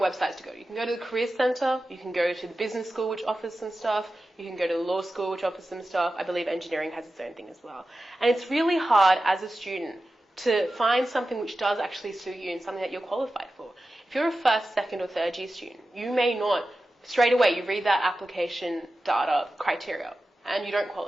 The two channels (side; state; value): both; normal; correlation 0.93